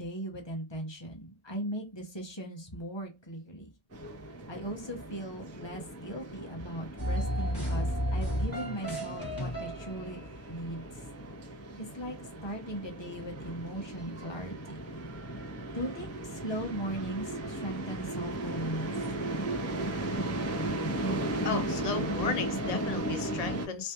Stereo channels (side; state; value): right; late; 1.2 ms